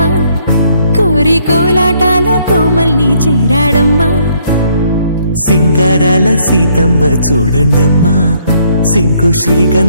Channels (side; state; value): both; inverted; correlation -0.68